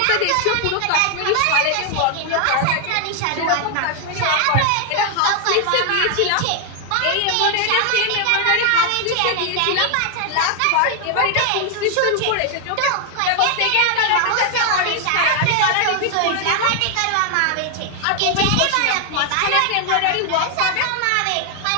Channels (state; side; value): different; both; correlation 0.00